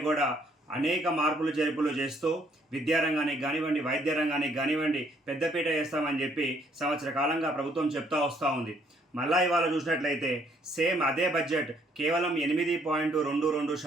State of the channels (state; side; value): normal; both; correlation 0.66